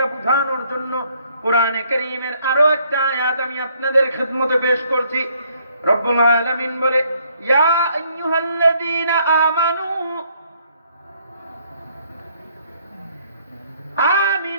বোঝানোর জন্য কোরআনে কারীমের আরো একটা আয়াত আমি আপনাদের খিদমতে পেশ করছি। রব্বুল আলামিন বলে, ইয়া আইয়ুহাল্লাযীনা আমানু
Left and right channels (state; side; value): inverted; both; correlation -0.67